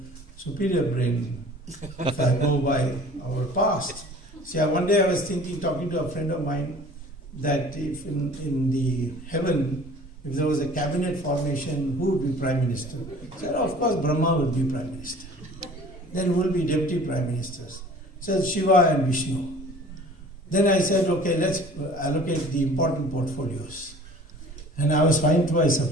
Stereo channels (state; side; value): normal; both; correlation 0.47